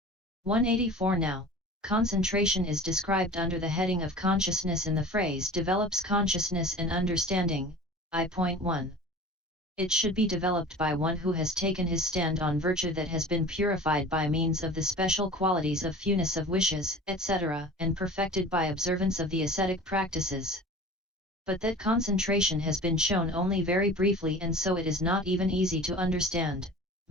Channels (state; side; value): normal; both; correlation 0.39